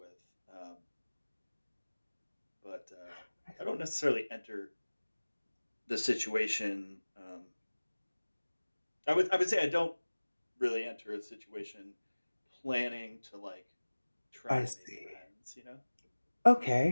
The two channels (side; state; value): both; inverted; correlation -1.00